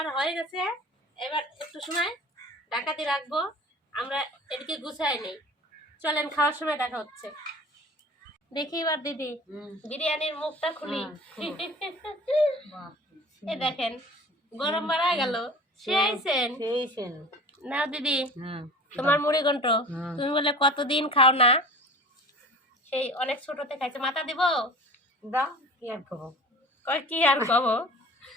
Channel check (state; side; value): normal; both; correlation 0.40